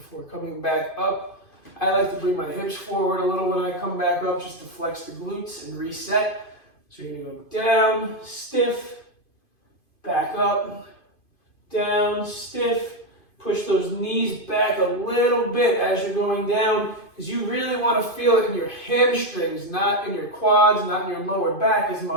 coming back up. I like to bring my hips forward a little when I come back up just to flex the glutes and reset. So you're going to go down, stiff, back up, down, stiff. Push those knees back a little bit as you're going down, because you really want to feel it in your hamstrings, not in your quads, not in your lower back as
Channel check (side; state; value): right; late; 2.5 ms